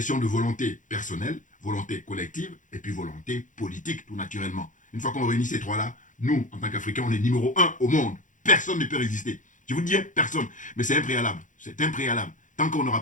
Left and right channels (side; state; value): right; late; 0.37 ms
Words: de volonté personnelle, volonté collective, et puis volonté politique, tout naturellement. Une fois qu'on réunit ces trois-là, nous, en tant qu'Africains, on est numéro 1 au monde. Personne ne peut résister. Je vous dis, personne. Mais c'est impréalable. C'est impréalable. Tant qu'on n'aura